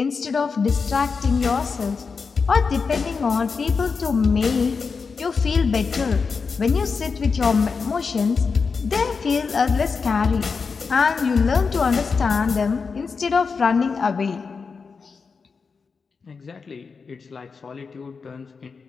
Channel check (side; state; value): right; quieter; 5.1 dB